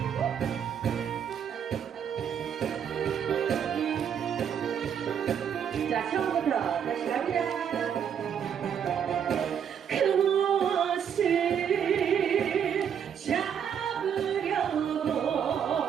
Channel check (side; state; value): left; quieter; 8.2 dB